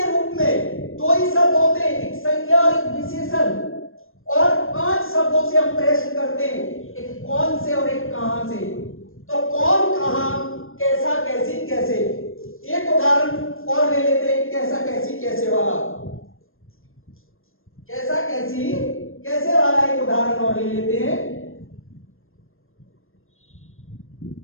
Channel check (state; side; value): late; right; 0.60 ms